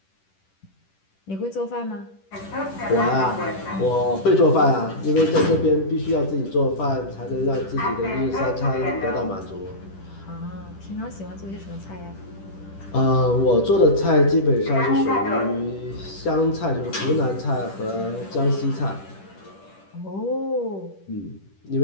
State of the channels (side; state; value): right; late; 10 ms